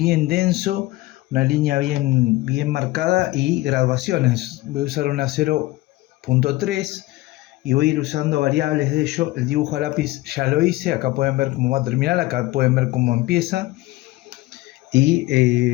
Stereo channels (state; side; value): quieter; right; 18.7 dB